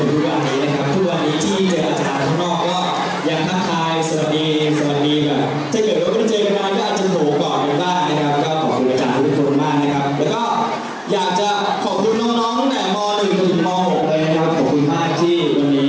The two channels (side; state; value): both; identical; correlation 1.00